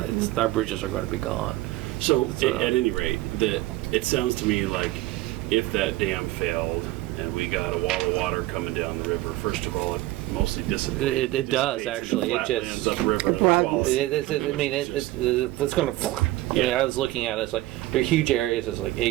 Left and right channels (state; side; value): quieter; left; 17.5 dB